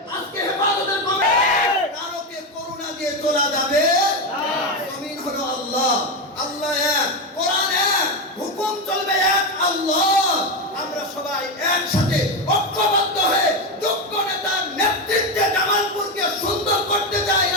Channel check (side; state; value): both; normal; correlation 0.12